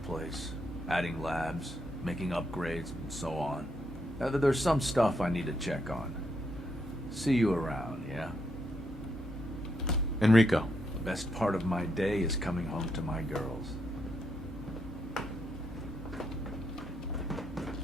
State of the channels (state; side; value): normal; both; correlation 0.78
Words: adding labs, making upgrades, and so on. There's some stuff I need to check on. See you around, yeah? Enrico. The best part of my day is coming home to my girls.